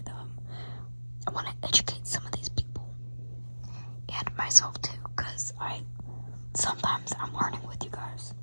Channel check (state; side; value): inverted; both; correlation -1.00